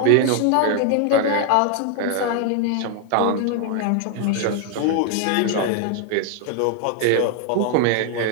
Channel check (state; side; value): different; both; correlation 0.00